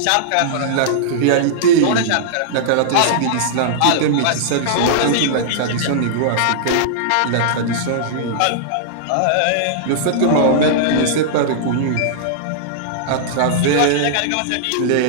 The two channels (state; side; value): different; both; correlation -0.02